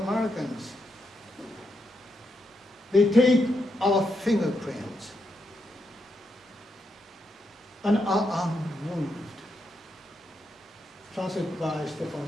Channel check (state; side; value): normal; both; correlation 0.82